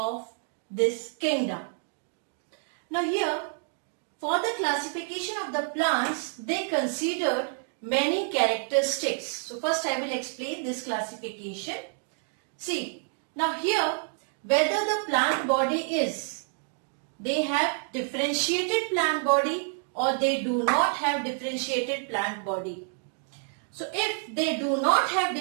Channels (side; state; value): left; silent; 59 dB below the other